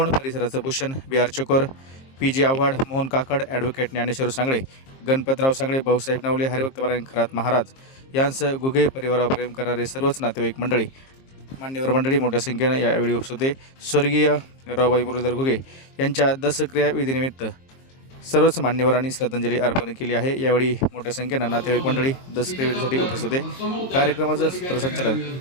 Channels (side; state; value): right; late; 22 ms